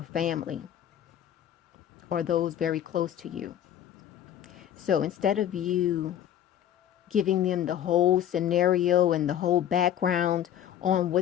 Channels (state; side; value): quieter; right; 10.5 dB